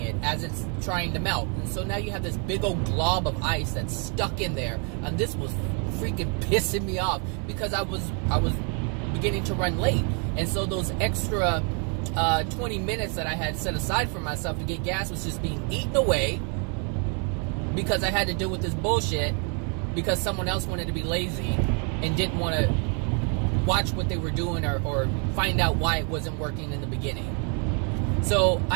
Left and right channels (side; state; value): left; quieter; 38.1 dB